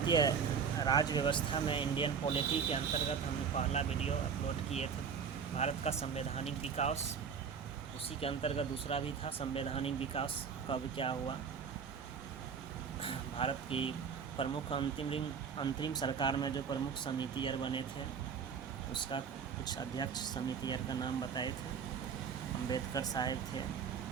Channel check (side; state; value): left; quieter; 6.5 dB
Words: राज व्यवस्था में इंडियन पॉलिटी के अंतर्गत हमने पहला वीडियो अपलोड किए थे। भारत का संवैधानिक विकास, उसी के अंतर्गत दूसरा भी था संवैधानिक विकास कब क्या हुआ। भारत की प्रमुख अंतरिम सरकार में जो प्रमुख समितियर बने थे उसका कुछ अध्यक्ष समितियर का नाम बताए थे। अंबेडकर साहब थे